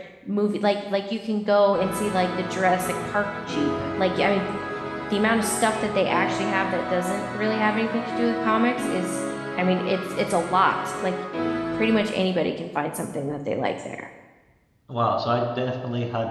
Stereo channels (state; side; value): identical; both; correlation 1.00